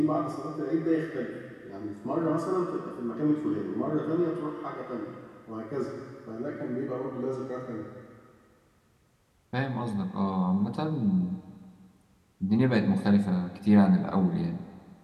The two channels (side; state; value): both; identical; correlation 1.00